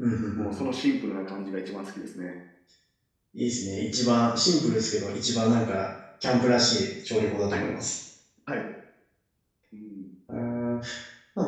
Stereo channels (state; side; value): identical; both; correlation 1.00